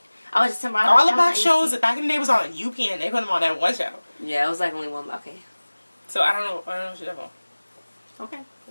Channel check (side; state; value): both; inverted; correlation -1.00